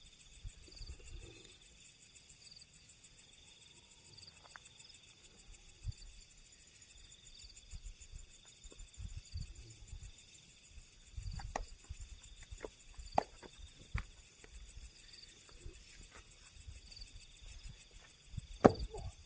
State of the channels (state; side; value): identical; both; correlation 1.00